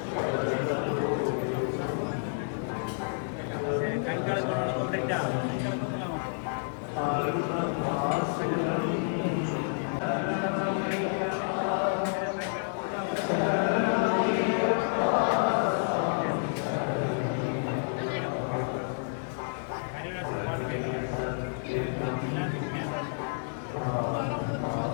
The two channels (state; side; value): silent; right; digital silence